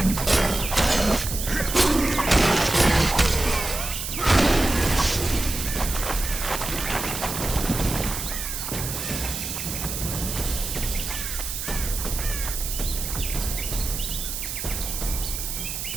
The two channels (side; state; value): right; noise; hiss, 5 dB below the sound